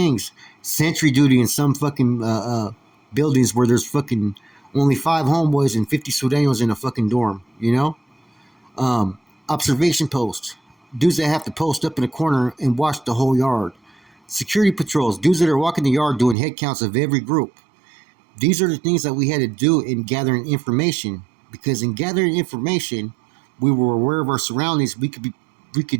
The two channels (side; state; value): left; drops out; at 16.4 s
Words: Sentry duty in some fucking buildings where there's fucking only 5 homeboys and 50 Sureños in a fucking dorm, you know? Observation posts. Dudes that have to post up in a corner and watch the whole yard. Security patrols. Dudes that are walking the yard doing head counts of every group. These are the things that we had to do in gathering information. Because in gathering information, we were aware of our surroundings. We